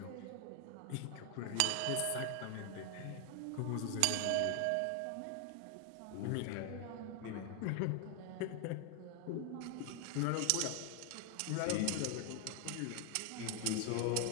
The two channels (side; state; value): both; different; correlation 0.00